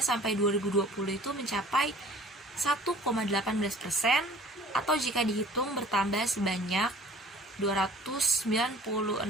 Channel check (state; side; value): normal; both; correlation 0.49